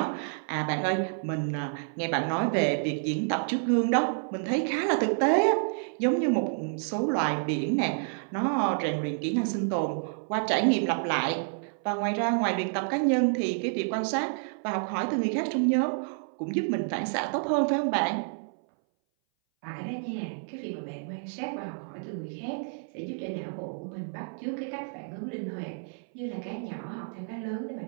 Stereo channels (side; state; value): left; silent; 58 dB below the other